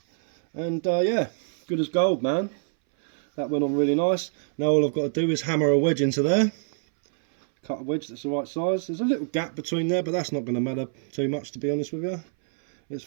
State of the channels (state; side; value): silent; left; 61 dB below the other